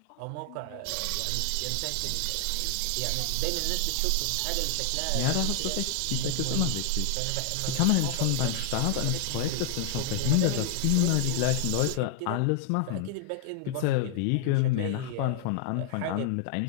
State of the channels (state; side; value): different; both; correlation 0.00